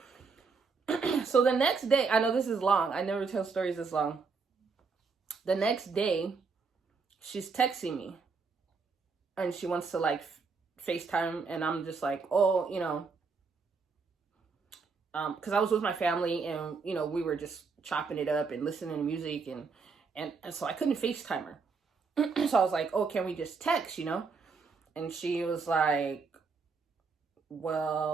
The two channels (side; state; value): left; quieter; 4.8 dB